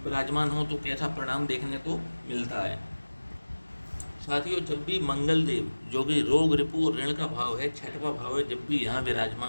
विराजमान हो तो कैसा परिणाम देखने को मिलता है। साथियों जब भी मंगल देव जो कि रोग रिपु और ऋण का भाव है, छठवां भाव है, जब भी यहाँ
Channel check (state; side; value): inverted; both; correlation -1.00